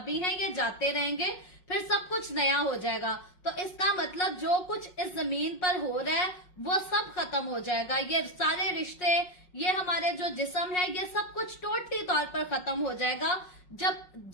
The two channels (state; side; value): late; right; 5.5 ms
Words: हैं ये जाते रहेंगे, फिर सब कुछ नया हो जाएगा, तो इसका मतलब जो कुछ इस जमीन पर हो रहा है वो सब खत्म हो जाएगा। ये सारे रिश्ते, ये हमारे जो जिस्म है, ये सब कुछ टोटली तौर पर खत्म हो जाएगा। जब